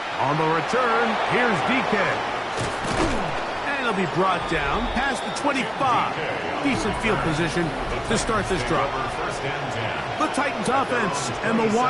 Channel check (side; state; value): both; identical; correlation 1.00